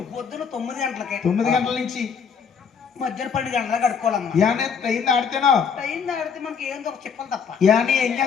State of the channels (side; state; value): right; quieter; 6.5 dB